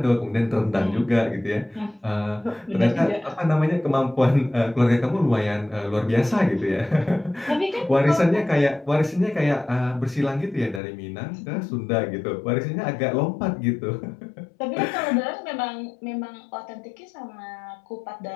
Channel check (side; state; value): right; drops out; at 10.8 s